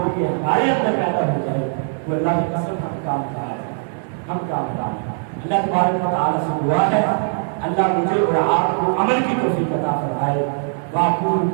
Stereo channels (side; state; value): left; silent; digital silence